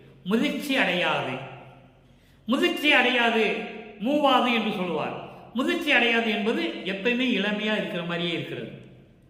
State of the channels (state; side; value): identical; both; correlation 1.00